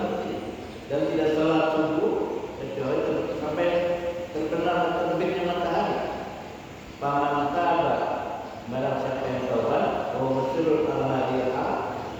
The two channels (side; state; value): both; identical; correlation 1.00